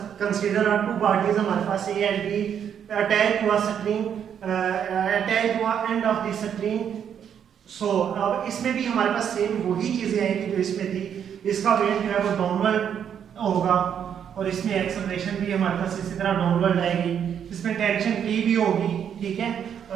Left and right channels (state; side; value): quieter; left; 8.5 dB